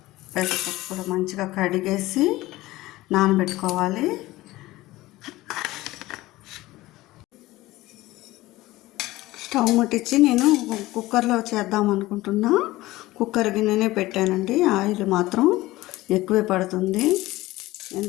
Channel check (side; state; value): right; quieter; 18.0 dB